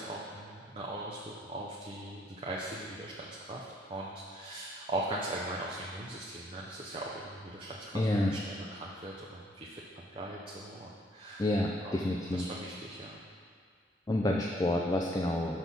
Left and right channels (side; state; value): both; normal; correlation 0.65